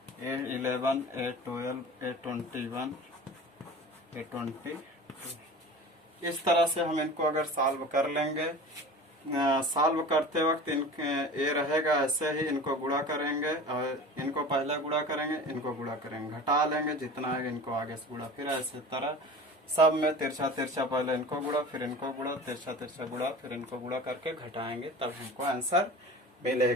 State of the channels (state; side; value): normal; both; correlation 0.36